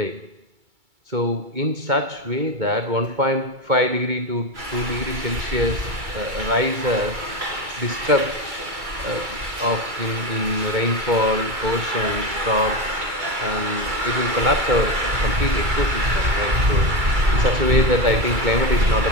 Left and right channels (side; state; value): left; late; 2.3 ms